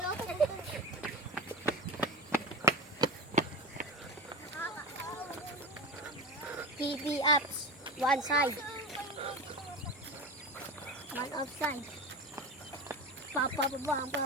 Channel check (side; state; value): both; normal; correlation 0.26